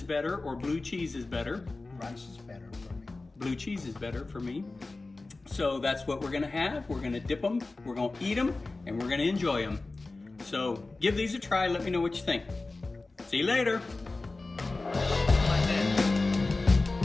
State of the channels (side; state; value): right; quieter; 3.4 dB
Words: better or blue cheese is better. Ranch is better for me. Blue cheese is better for me. So that's what we're gonna have. We're gonna dip them, we're gonna eat them, and we're gonna enjoy them. So give these a try, let me know what you think. See you later.